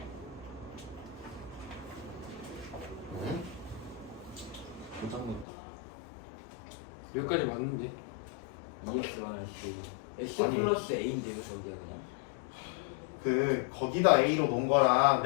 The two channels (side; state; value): right; drops out; at 5.5 s